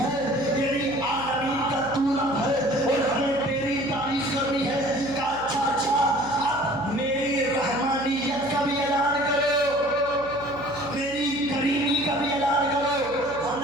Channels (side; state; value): right; noise; hum, 16 dB below the sound